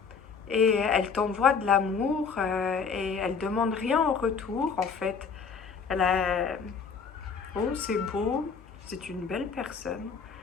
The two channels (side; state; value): right; quieter; 5.7 dB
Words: et elle t'envoie de l'amour, et elle demande rien en retour, en fait. Elle a... Oh, c'est beau, c'est une belle personne.